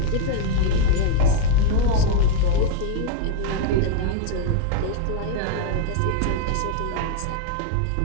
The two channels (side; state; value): both; different; correlation 0.00